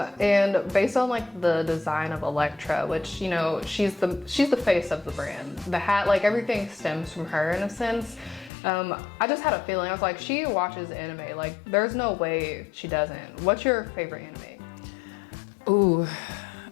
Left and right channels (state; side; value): drops out; right; at 8.5 s